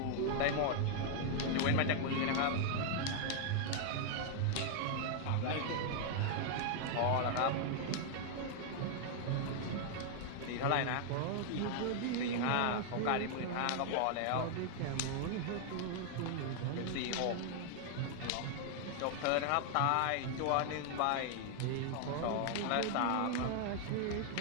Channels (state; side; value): different; both; correlation 0.00